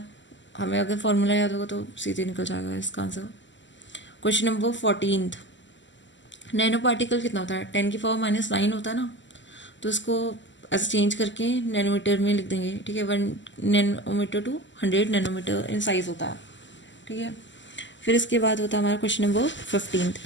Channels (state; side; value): late; right; 0.54 ms